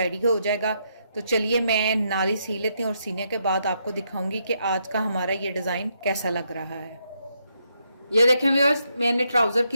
हो जाएगा। तो चलिए मैं नाली सी लेती हूँ और सीने के बाद आपको दिखाऊंगी कि आज का हमारा ये डिज़ाइन कैसा लग रहा है। ये देखें व्यूअर्स, मैंने ट्राउज़र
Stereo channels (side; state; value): both; inverted; correlation -0.78